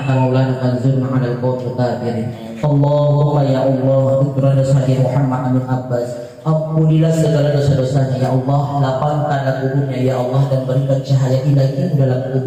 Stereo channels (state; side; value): identical; both; correlation 1.00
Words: kama maulana fanzurna 'alal qawmil kafirin. Allahumma ya Allah ikrana Sayyid Muhammad Amin Abbas, ampunilah segala dosa-dosanya ya Allah, lapangkan kuburnya ya Allah dan berikan cahaya ilahi dalam